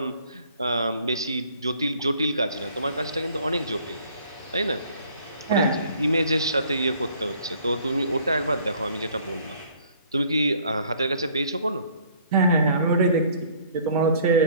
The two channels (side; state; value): both; inverted; correlation -0.57